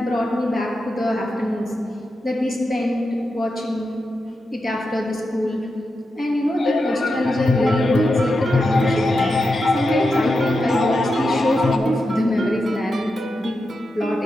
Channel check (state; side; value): normal; both; correlation 0.88